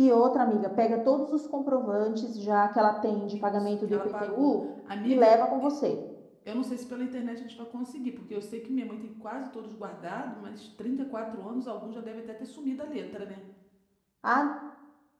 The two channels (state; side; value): identical; both; correlation 1.00